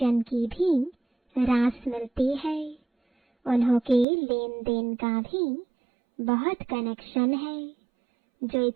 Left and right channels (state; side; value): drops out; left; at 4.0 s